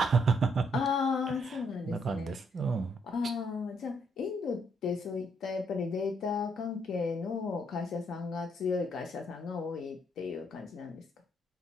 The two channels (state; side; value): normal; both; correlation 0.72